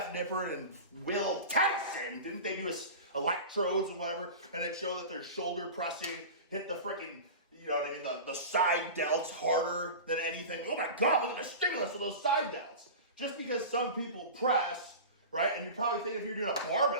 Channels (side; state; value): both; inverted; correlation -0.31